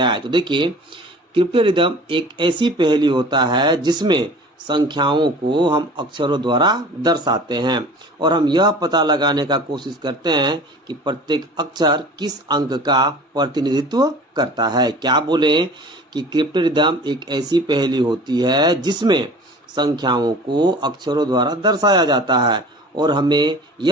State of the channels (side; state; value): both; normal; correlation 0.43